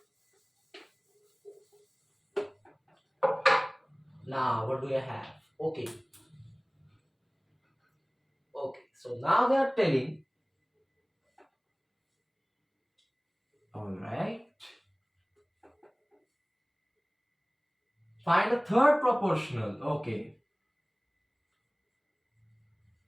Now, what do I have? Okay. So now they are telling, alright, find the third proportional. Okay.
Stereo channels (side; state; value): both; identical; correlation 1.00